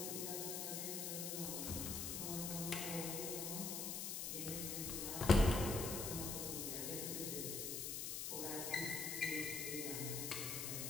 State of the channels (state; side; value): noise; left; hiss, 2 dB below the sound